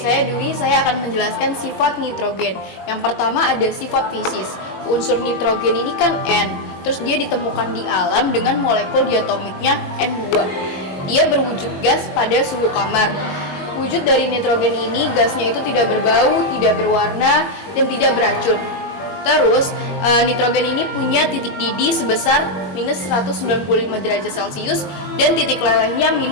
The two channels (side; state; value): right; late; 21 ms